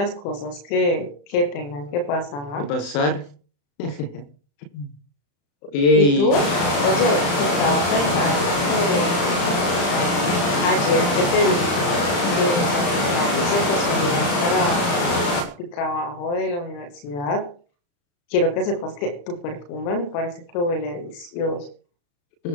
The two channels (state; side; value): late; right; 35 ms